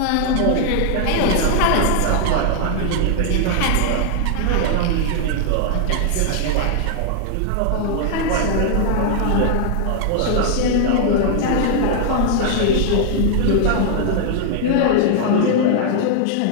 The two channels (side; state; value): both; different; correlation 0.00